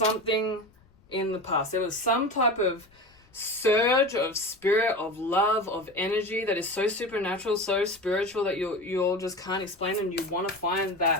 in the past. There was some type of surge of spirit, of love, of energy that is so supernatural, so spiritual that you all just can't explain, and you want to find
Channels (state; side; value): noise; left; rumble, 30 dB below the sound